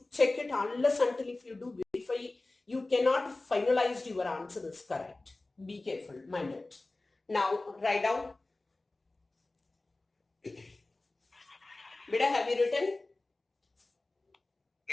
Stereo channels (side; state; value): right; quieter; 3.1 dB